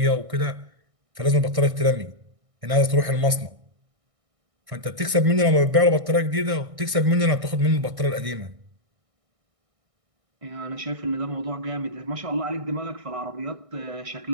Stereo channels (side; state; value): left; late; 1.6 ms